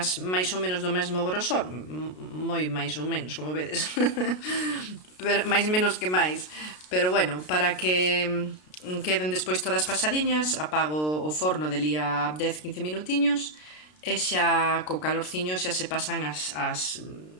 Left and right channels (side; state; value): right; late; 33 ms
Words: máis ou menos do mesmo grosor, moi máis ou menos, como vedes, pero, máis menos que máis, pero bueno, para que queden despois todas pasadiñas, apago o forno de lía 10-15 minutiños e xa co calorciño xa se pasan as